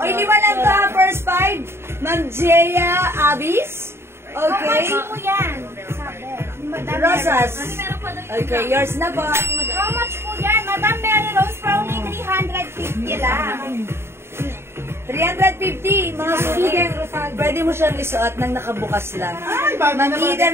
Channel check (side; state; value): left; late; 0.12 ms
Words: 5 lang to, ha? First 5. Ma'am Jaya Abis. Okay. How much po yan? Sabi. Madam Rosas. Okay, yours na po. How much po yan? Madam Mary Rose for only 350 lang. 350, mga suki. Pwede mo siyang isuot nang nakabukas lang. Ay, bago na Ma'am